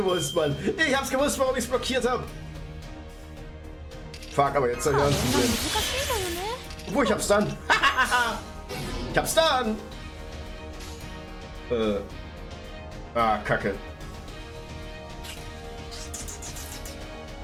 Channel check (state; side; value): identical; both; correlation 1.00